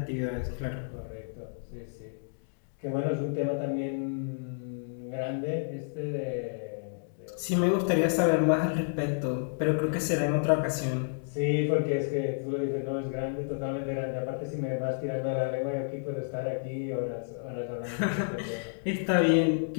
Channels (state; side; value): silent; right; digital silence